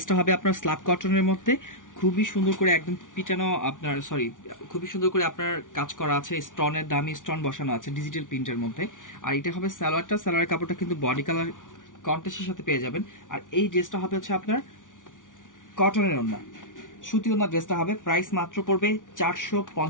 হবে আপনার স্ল্যাব কটনের মধ্যে, খুবই সুন্দর করে একদম পিটানো আপনার খুবই সুন্দর করে আপনার কাজ করা আছে, স্টোনের দামি স্টোন বসানো আছে ডিজিটাল প্রিন্টের মধ্যে। আর এটা হবে সালোয়ারের কাপড়টা কিন্তু বডি কালার কন্ট্রাস্টের সাথে পেয়ে যাবেন। আর এই ড্রেসটা হবে হচ্ছে আপনার কটনের ওড়না, সুতি ওড়না ড্রেসটা হবে। প্রাইস মাত্র পড়বে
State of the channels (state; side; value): late; right; 0.88 ms